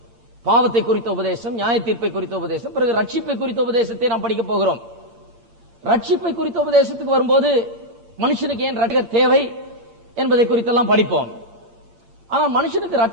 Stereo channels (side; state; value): left; late; 8.8 ms